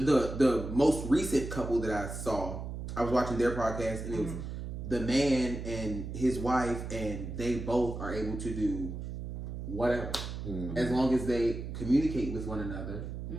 most recent couple that I saw. I was watching their podcast and it was the man and his wife, and they both are able to do whatever as long as they communicate with one another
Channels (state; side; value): noise; right; hum, 7 dB below the sound